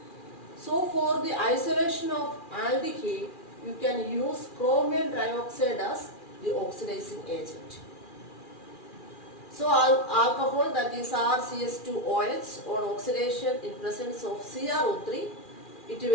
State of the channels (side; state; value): right; late; 2.4 ms